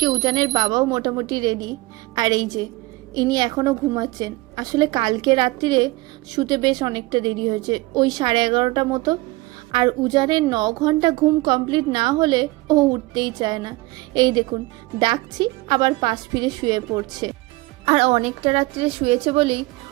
উজানের বাবাও মোটামুটি রেডি। আর এই যে ইনি এখনও ঘুমাচ্ছেন। আসলে কালকে রাত্রিরে শুতে বেশ অনেকটা দেরি হয়েছে, ওই 11:30 মতো। আর উজানের 9 ঘন্টা ঘুম কমপ্লিট না হলে ও উঠতেই চায় না। এই দেখুন, ডাকছি আবার পাশ ফিরে শুয়ে পড়ছে। আর অনেকটা রাত্রিরে শুয়েছে বলেই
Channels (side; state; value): left; quieter; 21.5 dB